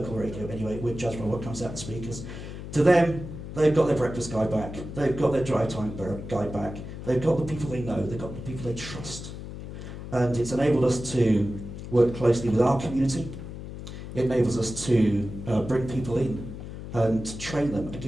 radio anyway. We're judged by what comes out the speakers. To them, they've got their breakfast guide back, they've got their drive time guide back, they've got the people they know, they've got the people they trust. And it's enabled us to work closely with our community. It enables us to bring people in and train them and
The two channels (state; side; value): noise; left; hum, 10 dB below the sound